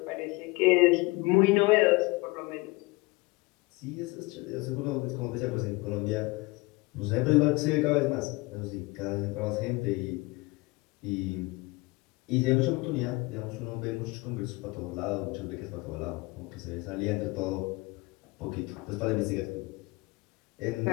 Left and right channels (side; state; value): right; quieter; 24.2 dB